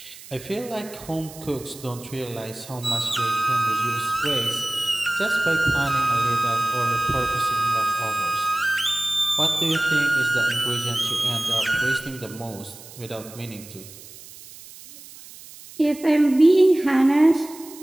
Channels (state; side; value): noise; right; hiss, 18 dB below the sound